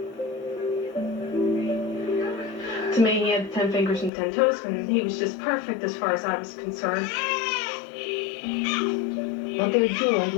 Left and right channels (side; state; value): right; drops out; at 4.1 s